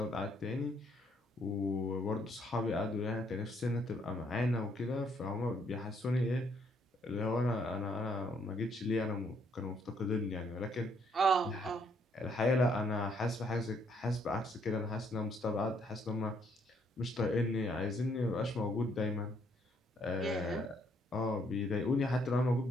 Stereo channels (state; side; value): normal; both; correlation 0.69